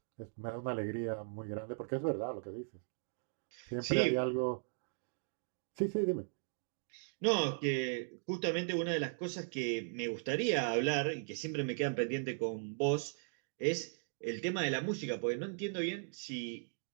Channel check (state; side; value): silent; left; digital silence